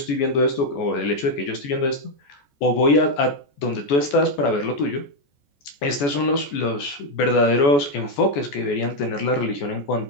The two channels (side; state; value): right; late; 14 ms